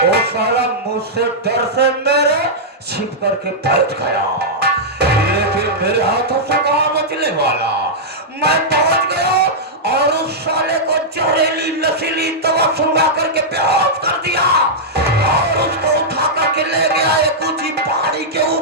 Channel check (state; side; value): normal; both; correlation -0.09